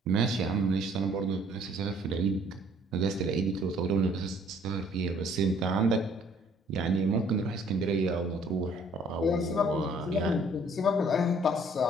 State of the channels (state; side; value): normal; both; correlation 0.59